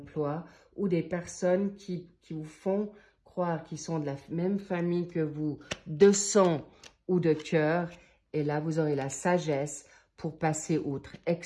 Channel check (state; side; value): identical; both; correlation 1.00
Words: ou des personnes qui vous font croire qu'ils sont de la même famille que vous, de sang ou de cœur. Et là, vous aurez la sagesse pour passer outre.